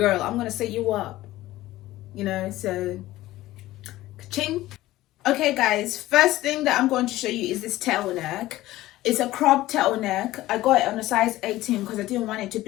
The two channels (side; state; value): right; quieter; 16.4 dB